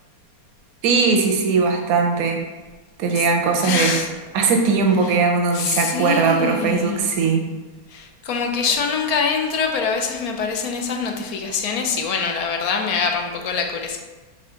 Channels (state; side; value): late; left; 4.3 ms